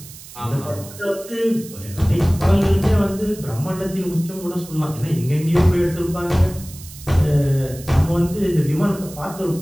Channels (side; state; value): right; noise; hiss, 17 dB below the sound